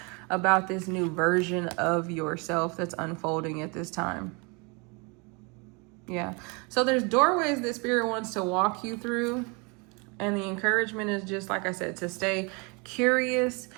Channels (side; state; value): left; quieter; 30.8 dB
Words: about this new version of yourself that's unfolding at this time. Yeah. So there's doorways that Spirit wants to walk you through. And the encouragement is just, like I said, to stay curious,